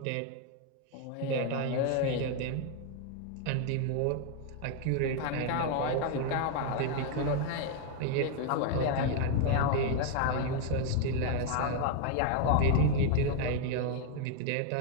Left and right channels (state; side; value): different; both; correlation 0.00